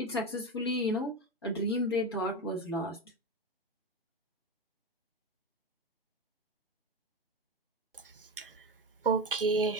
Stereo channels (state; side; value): normal; both; correlation 0.20